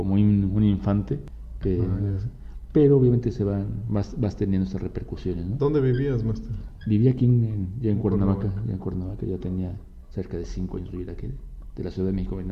un infante, pero obviamente vas teniendo esas repercusiones, ¿no? ¿Dónde vivías, Master? Viví aquí ya en Cuernavaca, ya tenía cerca de 5 años de vivir aquí, de la Ciudad de México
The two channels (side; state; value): both; identical; correlation 1.00